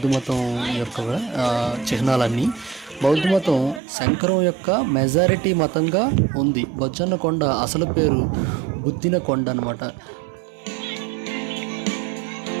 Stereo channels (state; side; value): drops out; left; at 3.8 s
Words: మతం యొక్క చిహ్నాలన్నీ. బౌద్ధ మతం శంకరం యొక్క మెజారిటీ మతంగా ఉంది. బొజ్జన్నకొండ అసలు పేరు బుద్ధిన కొండ అనమాట.